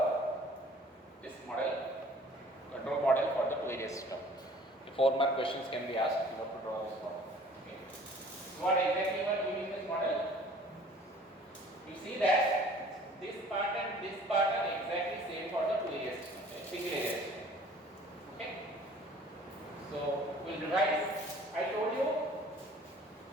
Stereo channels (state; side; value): normal; both; correlation 0.51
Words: this model, control model for the two area system. The 4 mark questions can be asked. You have to draw this model. Okay. So what exactly you are doing in this model? You see that this part and this part are exactly same for the two area system, single area system. Okay. So we'll revise. I told you